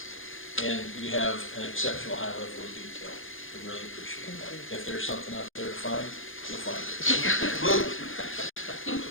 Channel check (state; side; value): late; right; 0.59 ms